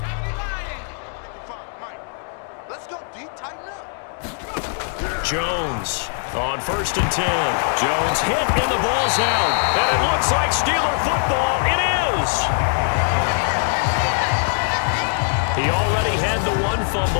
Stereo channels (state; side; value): silent; right; 63 dB below the other